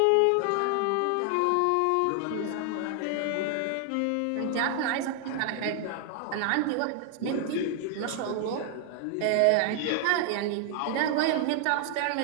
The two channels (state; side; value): different; both; correlation 0.00